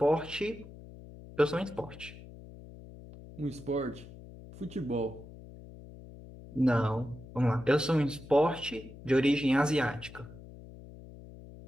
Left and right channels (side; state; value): left; noise; hum, 17 dB below the sound